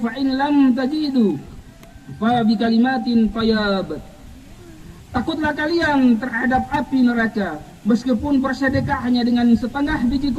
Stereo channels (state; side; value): identical; both; correlation 1.00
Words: in lam tajidu fa bi kalimatin fayabat." Takutlah kalian terhadap api neraka meskipun bersedekah hanya dengan setengah biji